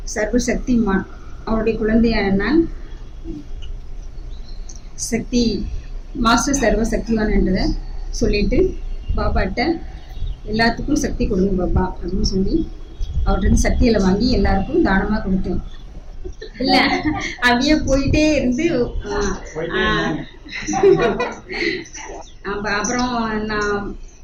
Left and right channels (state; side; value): identical; both; correlation 1.00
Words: சர்வ சக்திமான். அவருடைய குழந்தையான நான் சக்தி மாஸ்டர் சர்வ சக்திவான்ன்றதை சொல்லிட்டு பாபாட்ட எல்லாத்துக்கும் சக்தி கொடுங்க பாபா அப்படின்னு சொல்லி அவர்கிட்ட சக்தியில் வாங்கி எல்லாருக்கும் தானமாக கொடுத்தேன். இல்லை அப்படியே போயிட்டே இருந்து அப்புறம்